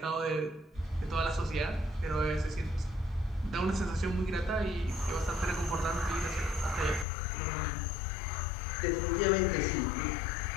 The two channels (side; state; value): right; drops out; at 7.1 s